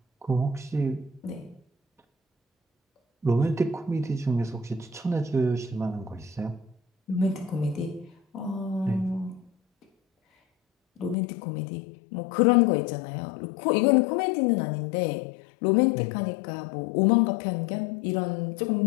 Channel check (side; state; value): right; drops out; at 11.2 s